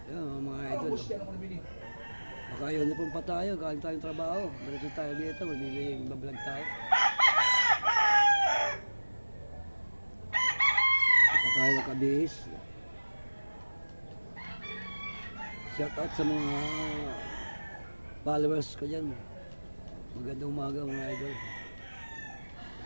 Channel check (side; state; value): both; inverted; correlation -1.00